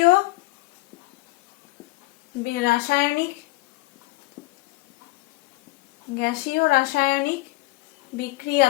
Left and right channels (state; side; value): quieter; right; 20.7 dB